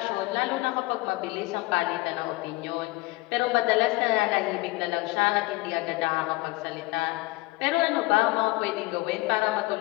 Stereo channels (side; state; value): right; quieter; 21.5 dB